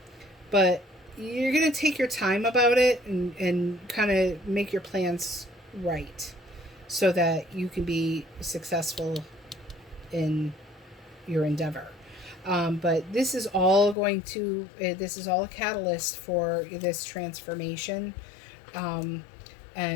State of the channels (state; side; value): drops out; right; at 14.0 s